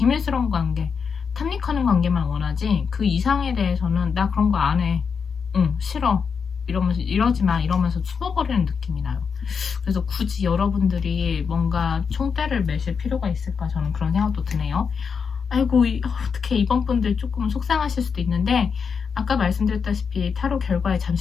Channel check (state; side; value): quieter; right; 6.1 dB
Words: 관계, 탐닉하는 관계만 원하지 그 이상에 대해서는 나 그런 거 안 해, 싫어, 이러면서 이러지 마 이러면서 숨어버리는 느낌이 나요. 그래서 굳이 여러분들이 뭔가 총대를 매실 필요가 있을까, 저는 그런 생각도 드네요. 아이고 어떻게 이번 분들 조금 속상하실 수도 있는데, 아까 말씀드렸다시피 타로 결과에